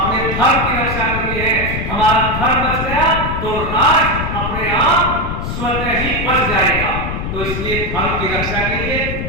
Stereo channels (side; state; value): left; noise; rumble, 4 dB below the sound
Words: धर्म की रक्षा करनी है। हमारा धर्म बच गया तो राष्ट्र अपने आप स्वतः ही बच जाएगा। तो इसलिए धर्म की रक्षा के लिए